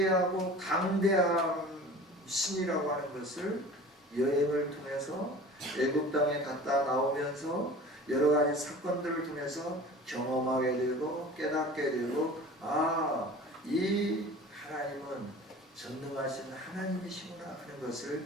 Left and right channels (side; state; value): both; normal; correlation 0.41